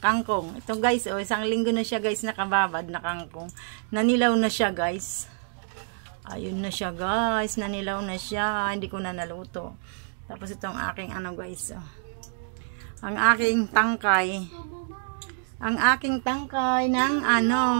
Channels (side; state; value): left; silent; digital silence